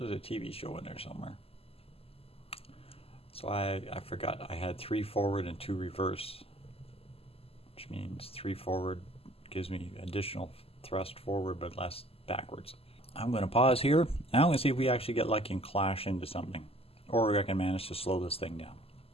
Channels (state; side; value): late; right; 0.28 ms